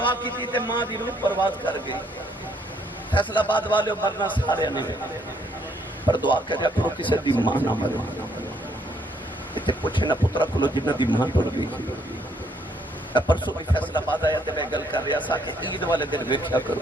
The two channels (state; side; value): normal; both; correlation 0.69